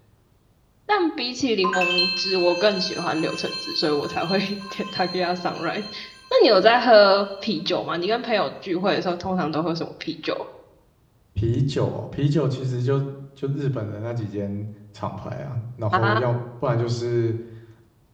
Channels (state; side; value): identical; both; correlation 1.00